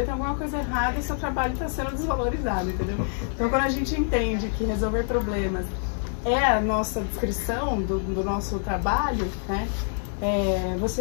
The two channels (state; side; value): silent; right; digital silence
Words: tem alguma coisa errada e seu trabalho está sendo desvalorizado, entendeu? Então quando a gente entende que resolver problemas é a nossa descrição do nosso trabalho, né?